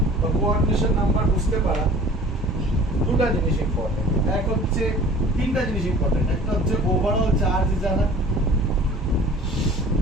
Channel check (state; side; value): normal; both; correlation 0.45